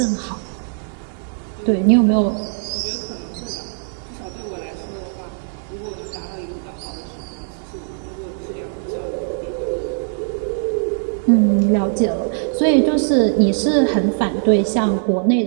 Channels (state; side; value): silent; left; digital silence